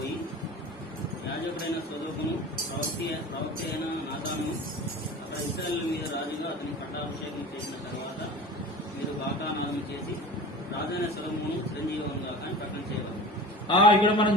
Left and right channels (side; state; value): both; normal; correlation 0.36